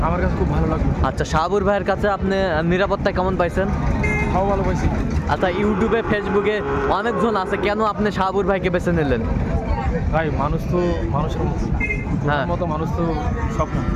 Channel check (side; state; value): both; identical; correlation 1.00